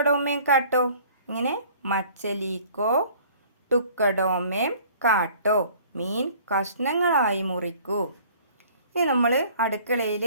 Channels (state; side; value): inverted; both; correlation -0.52